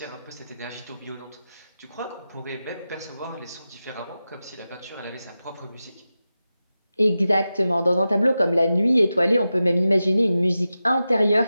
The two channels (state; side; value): inverted; both; correlation -0.93